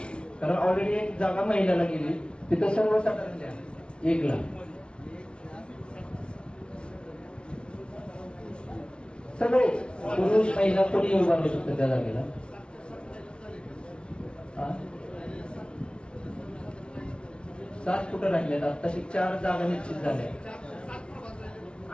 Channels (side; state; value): right; late; 0.057 ms